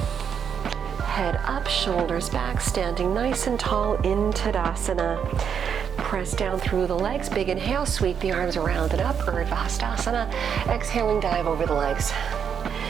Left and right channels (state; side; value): quieter; left; 7.5 dB